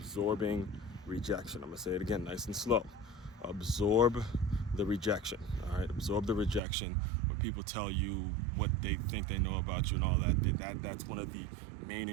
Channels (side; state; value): left; drops out; at 6.6 s